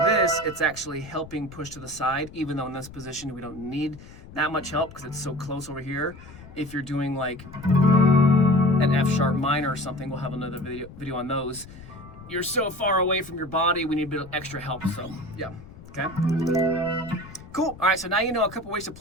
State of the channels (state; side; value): noise; left; rumble, 17 dB below the sound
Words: it's actually helping push to the side, even though in this position we don't need that much help because it's so close over here. If you're doing like an F sharp minor or something, we'll have another video on those. You're so far away from your body, we need a bit of extra help, so yeah, okay? Cool, all right, so now you know a couple ways to